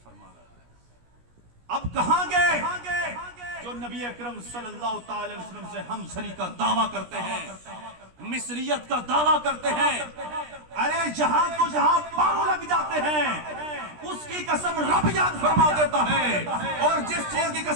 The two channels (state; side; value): late; left; 17 ms